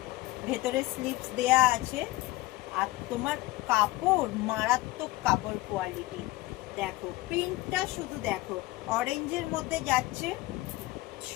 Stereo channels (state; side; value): quieter; right; 19.5 dB